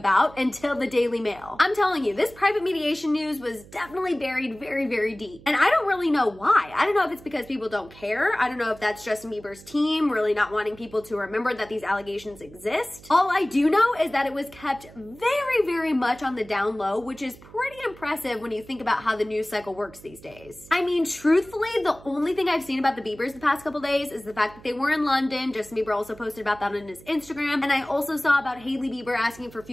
until the Daily Mail. I'm telling you, this private mediation news was definitely buried very, very deep. And I don't really know why. I don't know if it's because people don't care. I don't know if that's Justin Bieber's team really not wanting people to remember that these allegations exist. All I do know is that it was kept very, very much on the down low, which is pretty impressive when you think about how the news cycle works these days. I mean, truthfully, the only thing I've seen about the Biebers the past couple days is the fact that they were in London. Justin Bieber also posted about that on his Instagram. And I also saw about Hailey Bieber asking for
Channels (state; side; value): noise; right; hum, 21 dB below the sound